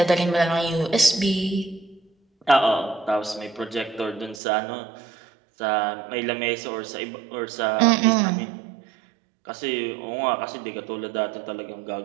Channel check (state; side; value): drops out; left; at 4.4 s